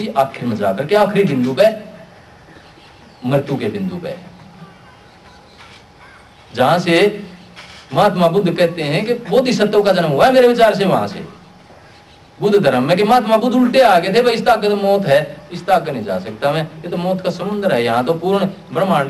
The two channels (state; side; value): identical; both; correlation 1.00